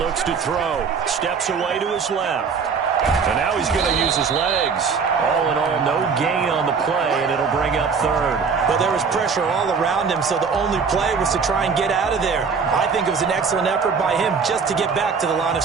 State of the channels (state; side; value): quieter; left; 5.6 dB